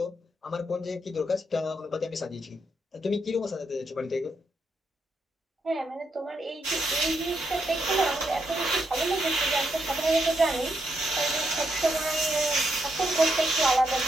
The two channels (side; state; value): both; normal; correlation 0.80